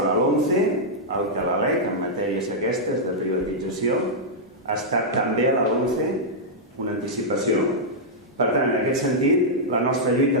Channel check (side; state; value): both; normal; correlation -0.08